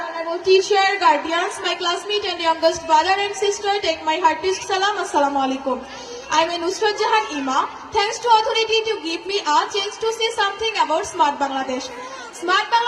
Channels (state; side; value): identical; both; correlation 1.00